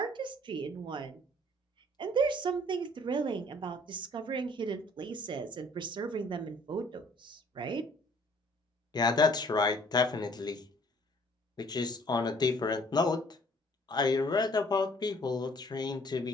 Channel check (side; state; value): both; normal; correlation 0.57